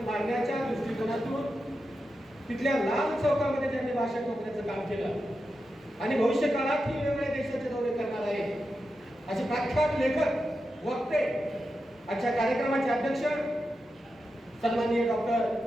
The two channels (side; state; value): both; normal; correlation 0.89